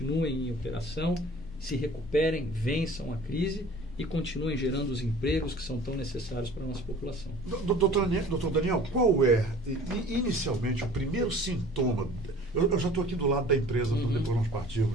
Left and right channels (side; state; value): both; normal; correlation 0.46